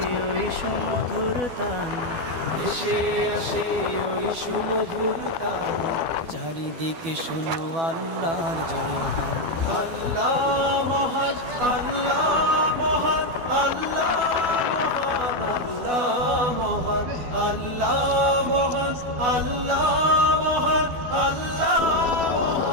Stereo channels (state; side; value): late; left; 12 ms